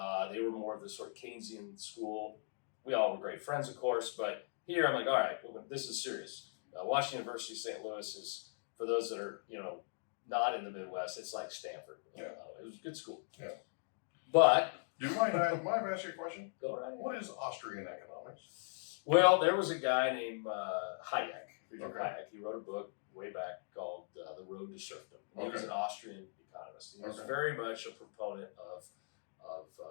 They were more of this sort of Keynesian school. We all were great friends, of course. But here, I'm like, all right, well, this is serious. Washington University, St. Louis is, for those that are, not in the Midwest, it's like Stanford. Yeah. It was a good school. Yeah. But Do you mind? Mind if I ask you a question? go right ahead. What is Austrian economics? Well, there was a guy named Hayek Friedrich Okay. Hayek. He wrote a book way back called The Road to Serfdom. He was Okay. an Austrian economist. He was Okay. very much a proponent of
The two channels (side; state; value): right; silent; digital silence